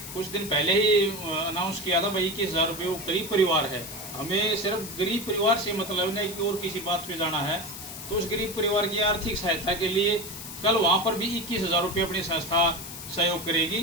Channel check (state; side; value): noise; left; hiss, 11 dB below the sound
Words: कुछ दिन पहले ही अनाउंस किया था भाई 21,000 रुपये। वो गरीब परिवार है, हमें सिर्फ गरीब परिवार से मतलब नहीं कि और किसी बात पे जाना है, तो उस गरीब परिवार की आर्थिक सहायता के लिए कल वहाँ पर भी 21,000 रुपये अपनी संस्था सहयोग